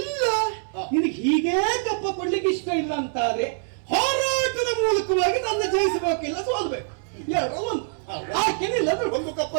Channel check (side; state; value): left; silent; 62 dB below the other